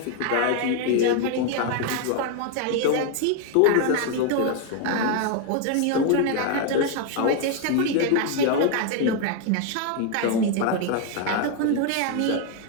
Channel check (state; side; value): different; both; correlation 0.01